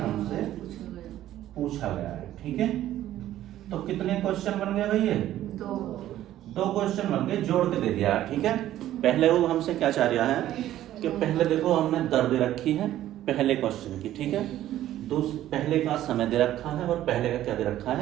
पूछा गया है, ठीक है? तो कितने क्वेश्चन बन गए भाई? ये 2 क्वेश्चन बन गए, जोड़ के दे दिया, ठीक है? पहले वो हमसे क्या चाह रहा है कि पहले देखो हमने दर दे रखी है पहले क्वेश्चन की, ठीक है? पहले का समय दे रखा है और पहले का क्या दे रखा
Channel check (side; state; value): left; quieter; 13.1 dB